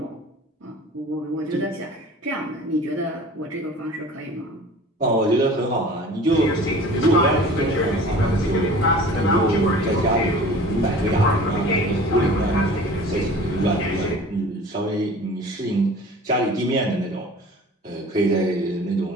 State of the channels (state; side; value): normal; both; correlation 0.43